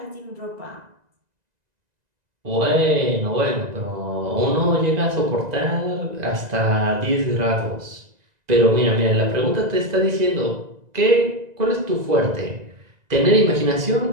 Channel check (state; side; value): late; left; 1.9 ms